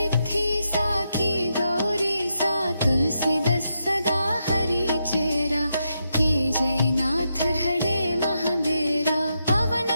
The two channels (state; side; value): inverted; both; correlation -0.84